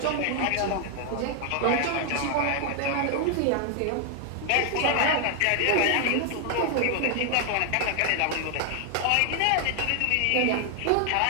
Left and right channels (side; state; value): both; different; correlation 0.00